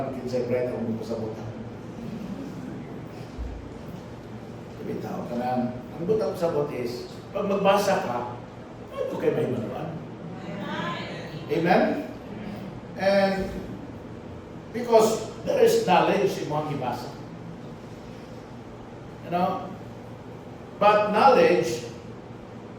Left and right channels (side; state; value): both; identical; correlation 1.00